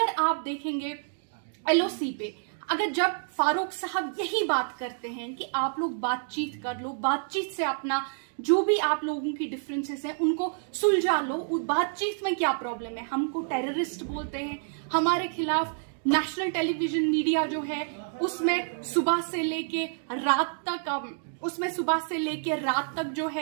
आप देखेंगे LOC पे, अगर जब फारूक साहब यही बात करते हैं कि आप लोग बातचीत कर लो, बातचीत से अपना जो भी आप लोगों की डिफरेंसेस हैं उनको सुलझा लो, उस बातचीत में क्या प्रॉब्लम है? हमको टेररिस्ट बोलते हैं, हमारे खिलाफ नेशनल टेलीविजन मीडिया जो है उसमें सुबह से लेके रात तक जो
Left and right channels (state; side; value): silent; left; digital silence